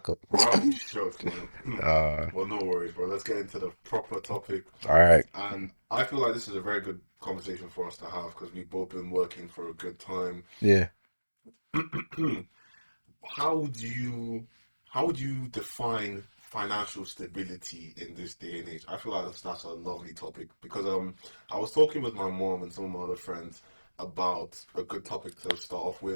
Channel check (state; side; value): inverted; both; correlation -1.00